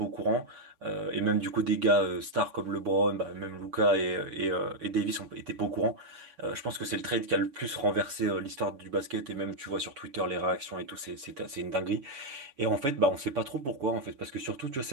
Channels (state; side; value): late; left; 7.1 ms